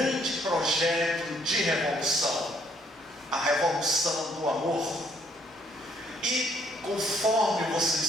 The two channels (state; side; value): normal; both; correlation 0.66